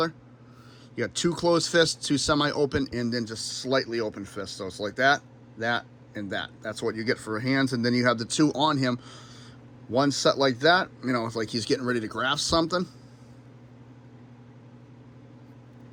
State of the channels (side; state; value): both; identical; correlation 1.00